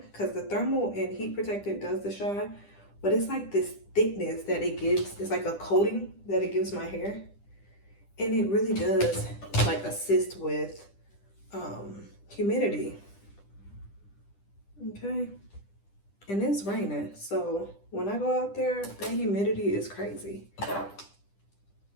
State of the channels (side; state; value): right; late; 10 ms